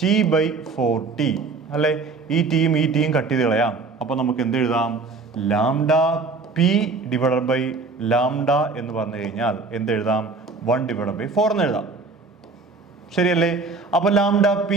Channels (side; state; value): left; quieter; 4.1 dB